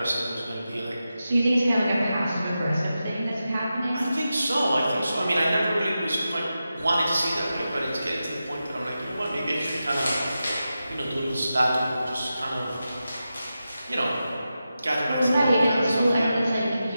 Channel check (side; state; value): both; inverted; correlation -0.91